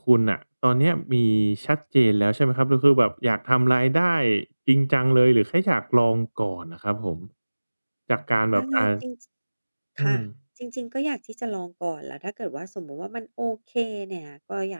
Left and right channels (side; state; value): both; inverted; correlation -1.00